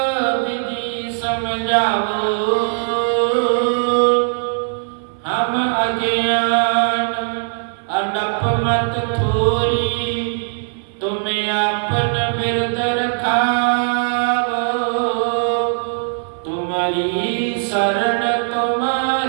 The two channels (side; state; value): left; silent; 58 dB below the other